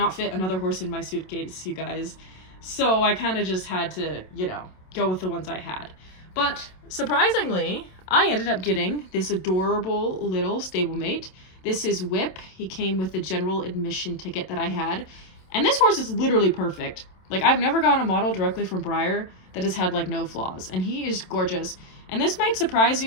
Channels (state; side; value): late; right; 27 ms